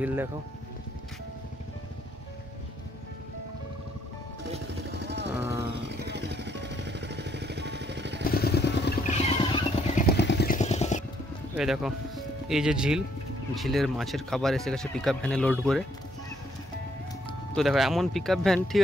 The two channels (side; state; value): both; normal; correlation 0.69